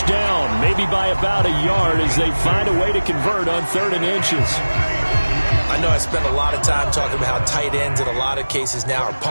down, maybe by about a yard as they find a way to convert on 3rd and inches. I know I spent a lot of time talking about how tight ends in a lot of cases now are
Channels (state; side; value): inverted; both; correlation -1.00